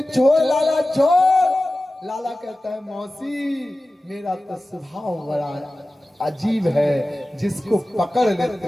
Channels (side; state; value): both; normal; correlation 0.96